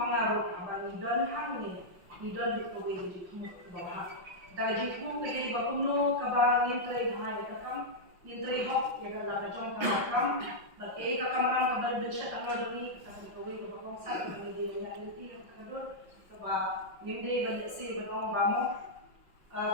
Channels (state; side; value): late; left; 5.6 ms